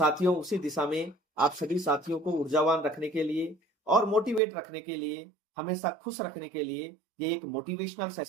उसी दिशा में आप सभी साथियों को ऊर्जावान रखने के लिए और मोटिवेट रखने के लिए, हमेशा खुश रखने के लिए ये एक मोटिवेशनल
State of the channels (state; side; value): drops out; left; at 4.4 s